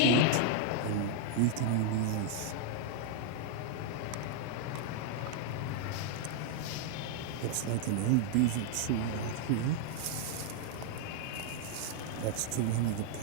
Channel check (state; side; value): different; both; correlation 0.00